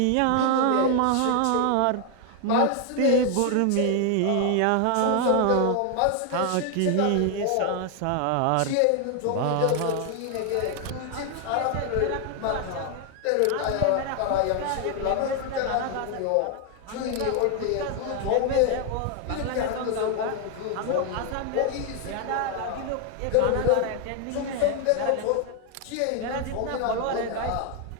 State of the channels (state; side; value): different; both; correlation 0.00